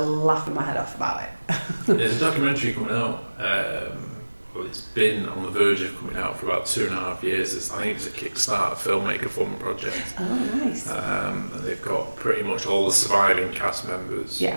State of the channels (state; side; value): inverted; both; correlation -1.00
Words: my head off about it. There's a documentary coming out. Well, it's been on the verge of coming out for about 2.5 years. I think it's a Kickstarter filmmaker fund project. Oh, nice. And they've got pretty much all the surviving cast members in it.